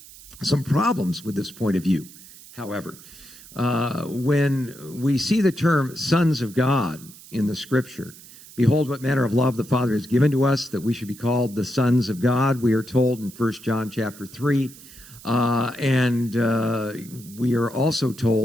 some problems with this point of view, however. When we see the term sons of God in the Scripture, "Behold, what manner of love the Father has given to us, that we should be called the sons of God," we are told in 1 John chapter 3. And we are also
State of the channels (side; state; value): right; noise; hiss, 19 dB below the sound